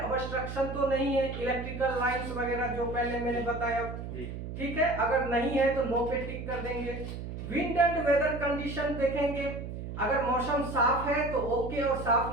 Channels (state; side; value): noise; right; hum, 8 dB below the sound